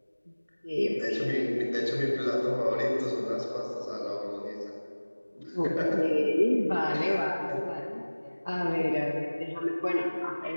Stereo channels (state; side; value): inverted; both; correlation -1.00